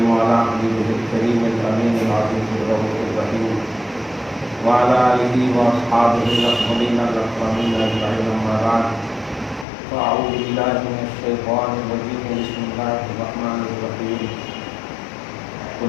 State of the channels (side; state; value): right; drops out; at 9.7 s